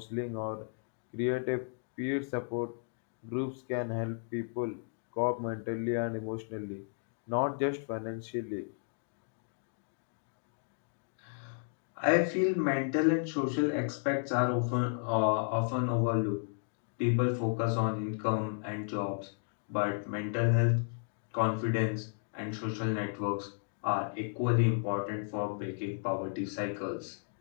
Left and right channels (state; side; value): silent; right; digital silence